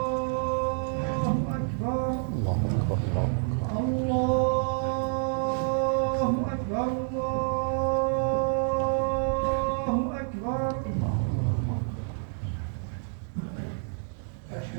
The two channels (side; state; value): left; silent; 59 dB below the other